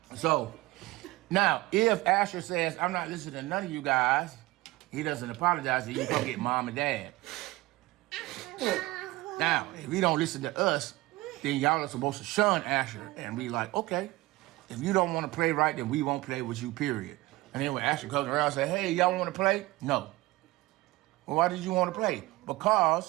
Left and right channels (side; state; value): left; quieter; 19.8 dB